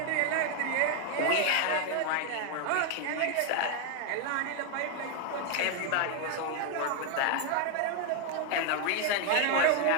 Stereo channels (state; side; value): different; both; correlation 0.01